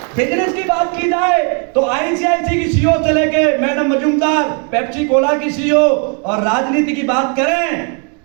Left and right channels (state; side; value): quieter; left; 38.8 dB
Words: बिजनेस की बात की जाए तो आईसीआईसी की सीईओ से लेके मैडम मजूमदार, पेप्सी कोला की सीईओ, और राजनीति की बात करें